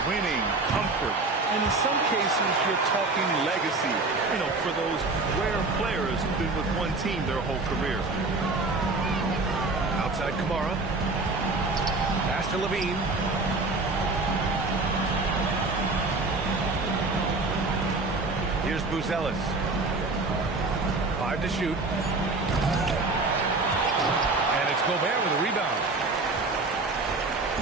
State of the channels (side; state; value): left; quieter; 3.4 dB